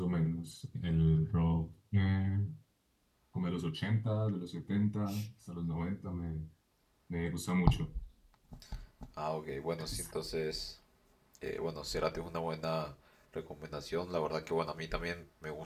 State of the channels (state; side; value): identical; both; correlation 1.00